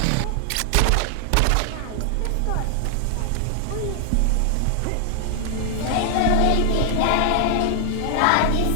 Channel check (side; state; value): both; different; correlation 0.00